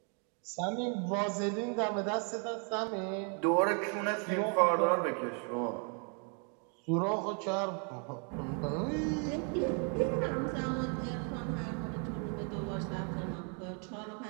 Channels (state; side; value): quieter; left; 39.8 dB